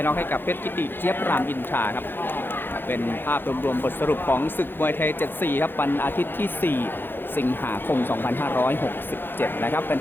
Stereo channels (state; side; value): late; right; 0.10 ms